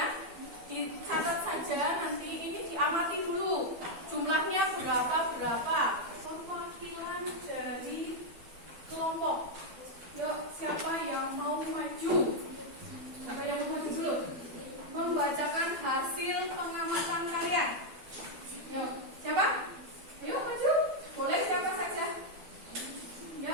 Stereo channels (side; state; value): left; late; 12 ms